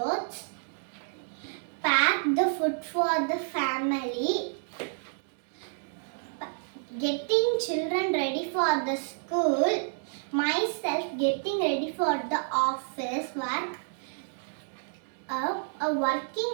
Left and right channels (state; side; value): silent; left; digital silence